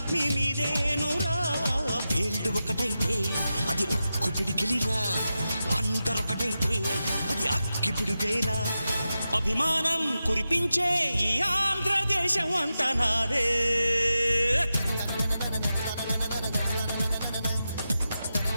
మీ మీదేనురా వేల్డు ఒకటైతే అది ఉక్కు పిడికిలిరా అందరొకటైతే అది అక్కి పిడుగేరా అభిమానం కురిపించే ఈ ఆంధ్రదేశం అంతా నాదే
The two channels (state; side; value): inverted; both; correlation -0.91